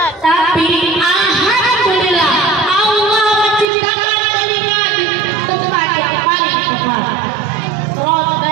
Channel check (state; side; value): drops out; left; at 3.7 s